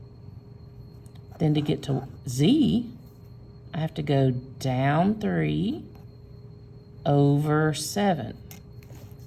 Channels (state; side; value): identical; both; correlation 1.00